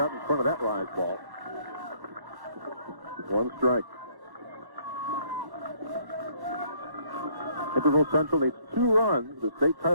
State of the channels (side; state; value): left; late; 1.1 ms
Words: in front of that rise ball. 1 strike. Naperville Central needs 2 runs. The state